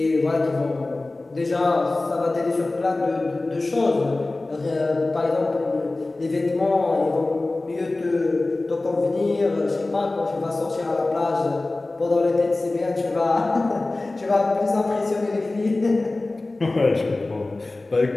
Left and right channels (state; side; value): quieter; right; 3.0 dB